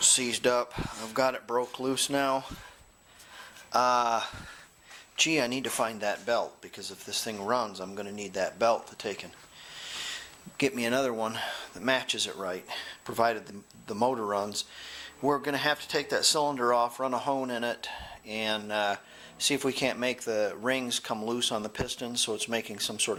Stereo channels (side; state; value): both; identical; correlation 1.00